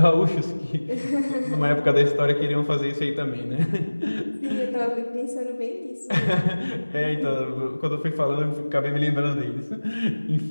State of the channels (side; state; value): both; inverted; correlation -1.00